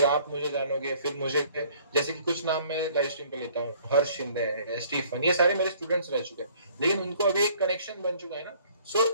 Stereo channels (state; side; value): inverted; both; correlation -0.57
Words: आप मुझे जानोगे, फिर मुझे, जैसे कि कुछ नाम मैं लाइव स्ट्रीम पे लेता हूँ, हर्ष शिंदे है, स्टीफन, ये सारे मेरे स्टूडेंट्स रह चुके हैं, लेकिन उनको अभी एक कनेक्शन बन चुका है ना, so